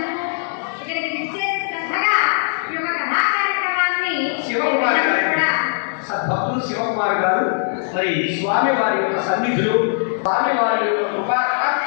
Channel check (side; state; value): right; silent; digital silence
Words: శివకుమార్ గారు, భక్తులు శివకుమార్ గారు మరి స్వామి వారి యొక్క సన్నిధులు, స్వామి వారి యొక్క